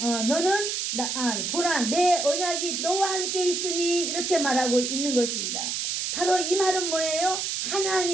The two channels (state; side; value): noise; right; hiss, 2 dB below the sound